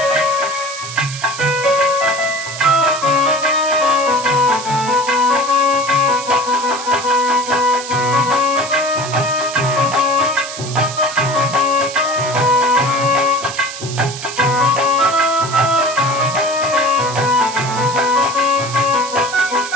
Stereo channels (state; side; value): noise; right; hiss, 10 dB below the sound